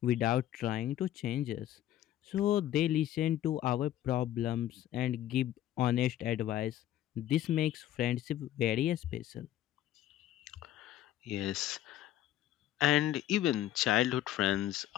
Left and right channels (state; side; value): quieter; right; 12.7 dB